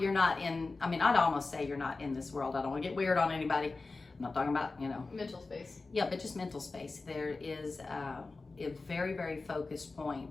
not in. I mean, I'd almost say you're not in this world. I don't want to get weird on anybody. I'm not talking about mental space. Yeah, but just mental space. There is a very, very focused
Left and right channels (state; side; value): quieter; right; 3.7 dB